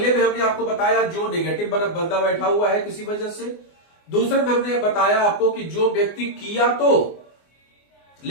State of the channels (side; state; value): right; late; 24 ms